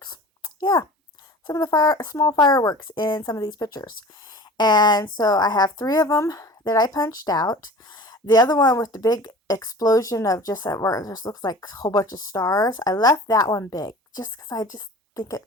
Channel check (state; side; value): normal; both; correlation 0.40